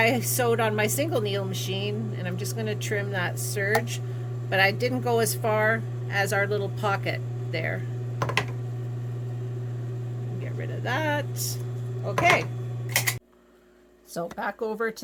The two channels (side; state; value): both; identical; correlation 1.00